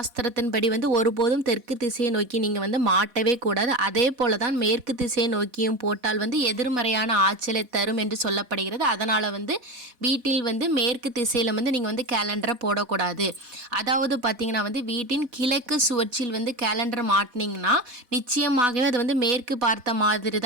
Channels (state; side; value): late; left; 4.1 ms